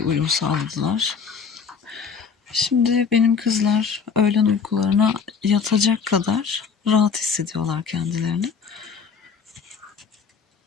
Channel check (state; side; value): quieter; right; 6.0 dB